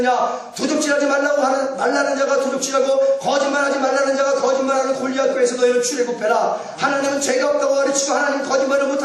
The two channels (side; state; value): both; identical; correlation 1.00